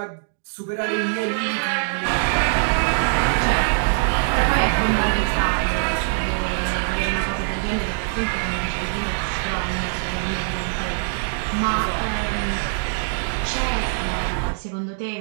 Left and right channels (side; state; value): left; silent; digital silence